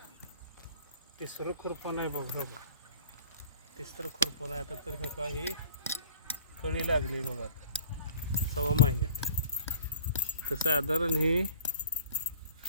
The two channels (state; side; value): inverted; both; correlation -0.48